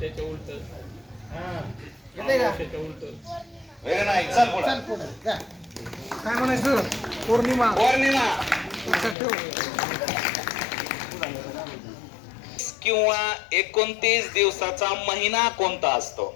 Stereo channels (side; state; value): right; drops out; at 9.2 s